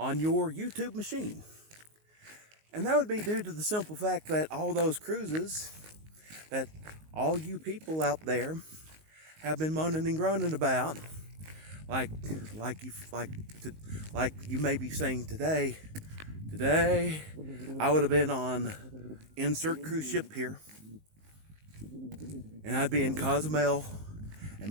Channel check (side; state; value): left; late; 19 ms